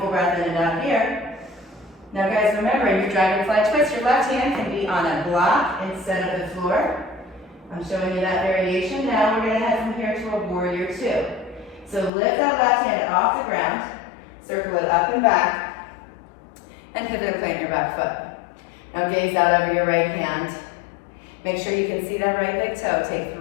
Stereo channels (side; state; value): right; drops out; at 12.1 s